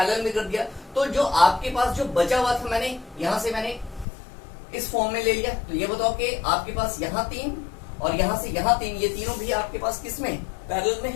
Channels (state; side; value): drops out; right; at 4.0 s